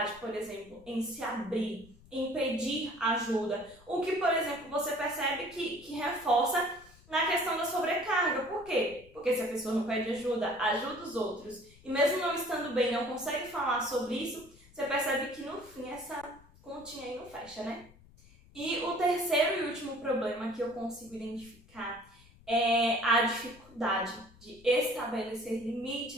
por exemplo, em se abrir, em pedir ajuda. O que, por exemplo, você percebe que reforça na questão da sobrecarga. Por quê? Porque se a pessoa não pede ajuda, ajuda os outros, e mesmo não estando bem, não consegue falar sobre isso, você percebe que no fim essa continha aí não fecha, E o terceiro e último problema que eu consigo identificar é a dificuldade de estabelecer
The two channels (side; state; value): left; noise; rumble, 25 dB below the sound